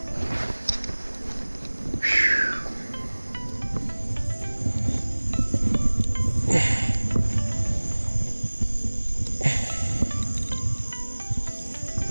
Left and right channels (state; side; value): inverted; both; correlation -1.00